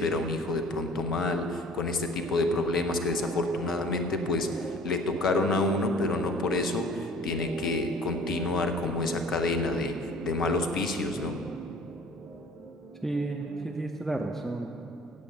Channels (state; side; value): normal; both; correlation 0.49